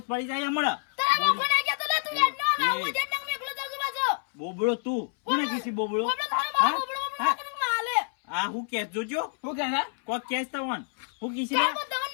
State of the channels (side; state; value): right; silent; 60 dB below the other